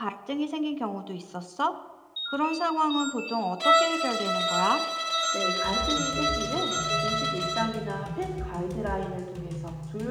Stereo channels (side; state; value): both; identical; correlation 1.00